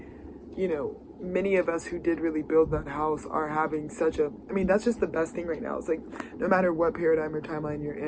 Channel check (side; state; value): both; identical; correlation 1.00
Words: you know, many of us who did really build that house are having such a, I mean, that's just the best thing right now. It's like, no matter what paradigm or timeline you're